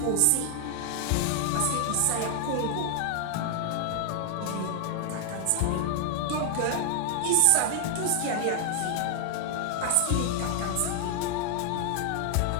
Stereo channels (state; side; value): different; both; correlation 0.00